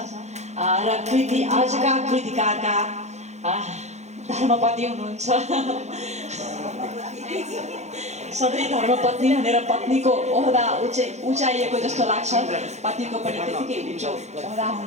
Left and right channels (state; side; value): late; left; 0.33 ms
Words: र आजका कृतिकारका धर्मपत्नी हुनुहुन्छ। सधैँ धर्मपत्नी भनेर पत्नीको ओहदा उचाइएको जस्तो लाग्छ, पत्नीको पनि त्यतिकै उच्च ओहदा